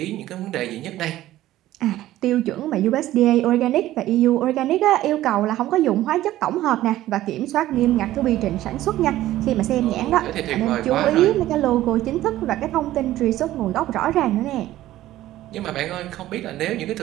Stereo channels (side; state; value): left; quieter; 14.6 dB